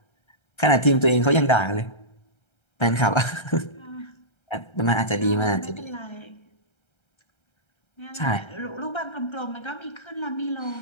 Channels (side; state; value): right; late; 1.3 ms